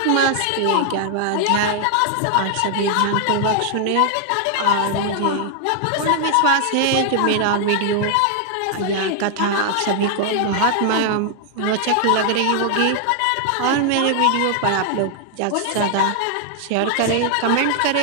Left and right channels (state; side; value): different; both; correlation 0.00